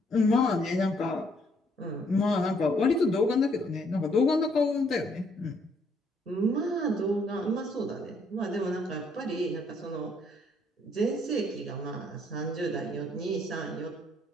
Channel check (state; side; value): normal; both; correlation 0.68